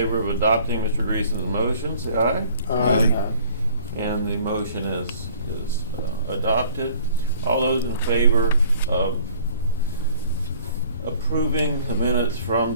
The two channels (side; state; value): both; inverted; correlation -0.54